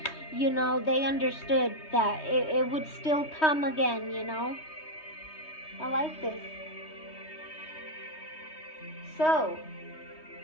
they understood that it would still come again, I like this. So,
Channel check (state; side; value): late; right; 3.2 ms